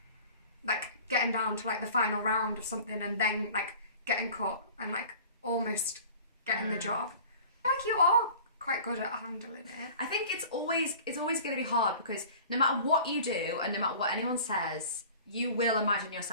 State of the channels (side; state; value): both; inverted; correlation -0.44